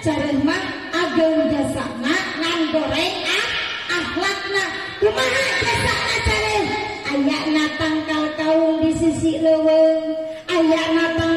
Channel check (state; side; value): identical; both; correlation 1.00